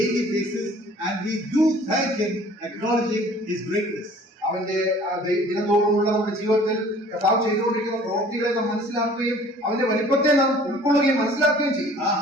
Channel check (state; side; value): normal; both; correlation 0.51